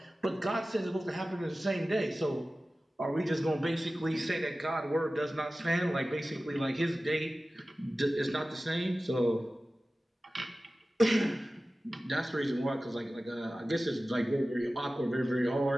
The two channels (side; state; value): both; normal; correlation 0.96